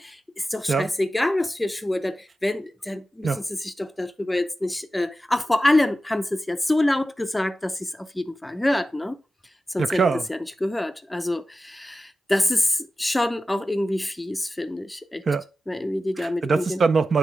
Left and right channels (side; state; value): both; normal; correlation 0.94